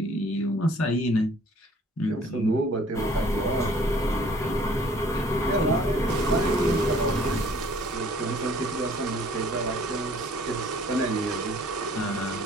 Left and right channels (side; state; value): both; normal; correlation 0.56